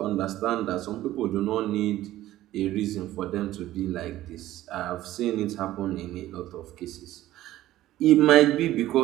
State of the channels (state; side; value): quieter; left; 14.7 dB